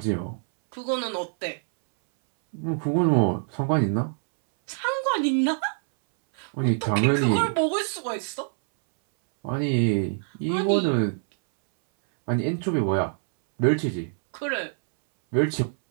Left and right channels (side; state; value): left; silent; 62 dB below the other